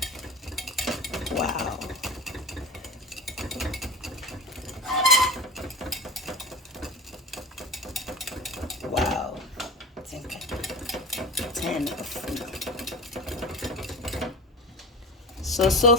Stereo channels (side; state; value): both; normal; correlation 0.31